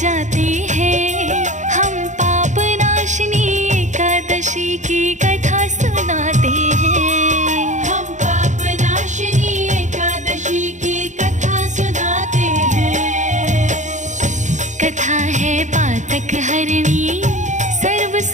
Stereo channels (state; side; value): late; left; 0.35 ms